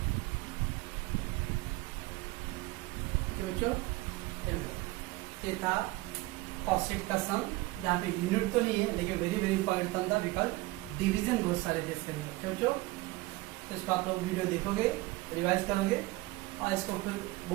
बच्चों ये था cost sheet का सम. यहाँ पे यूनिट तो नहीं है लेकिन वेरी वेरी इंपॉर्टेंट था बिकॉज डिवीजन बहुत सारे थे इसके अंदर. बच्चों तो इसको आप लोग वीडियो देखोगे, रिवाइज करोगे और इसको फिर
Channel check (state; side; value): quieter; left; 20.5 dB